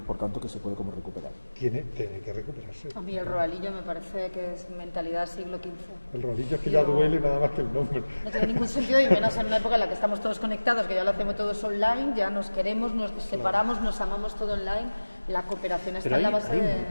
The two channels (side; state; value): both; inverted; correlation -1.00